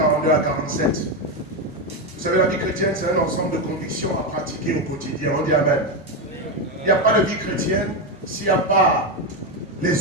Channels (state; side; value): normal; both; correlation 0.10